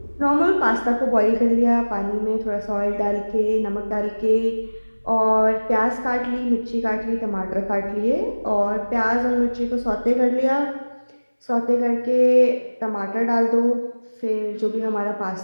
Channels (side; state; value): both; inverted; correlation -1.00